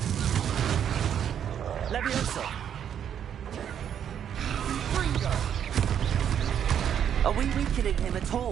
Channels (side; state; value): left; quieter; 9.0 dB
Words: Leviosa! Are we weakening him at